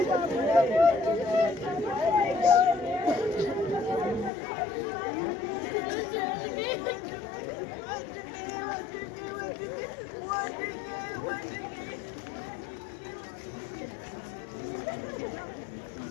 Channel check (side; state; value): right; drops out; at 4.3 s